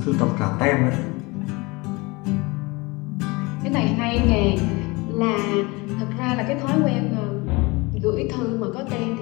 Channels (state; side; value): quieter; right; 24.9 dB